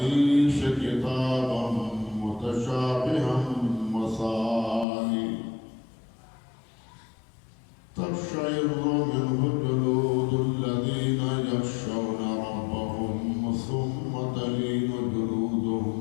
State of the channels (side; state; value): right; drops out; at 4.9 s